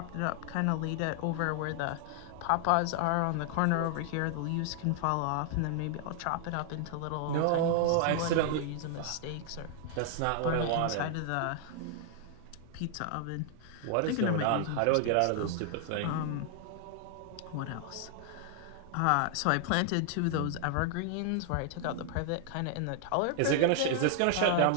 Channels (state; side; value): different; both; correlation 0.00